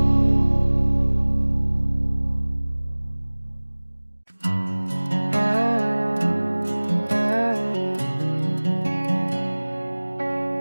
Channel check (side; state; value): both; inverted; correlation -1.00